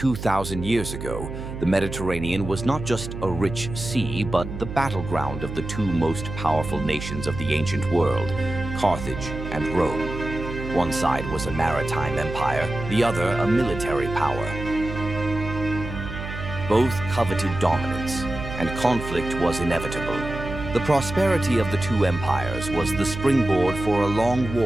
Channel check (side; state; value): right; noise; hum, 8 dB below the sound